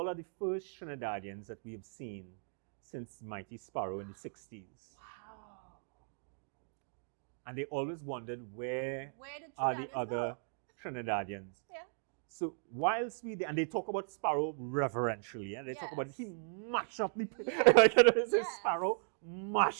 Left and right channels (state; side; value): silent; left; digital silence